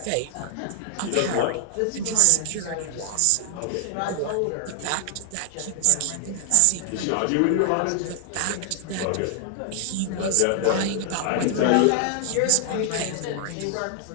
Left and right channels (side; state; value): both; different; correlation 0.00